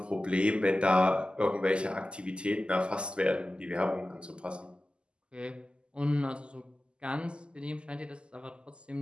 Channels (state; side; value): late; left; 0.050 ms